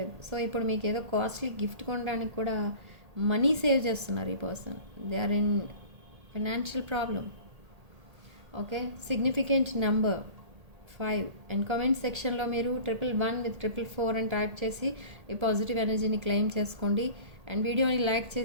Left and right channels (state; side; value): late; left; 1.8 ms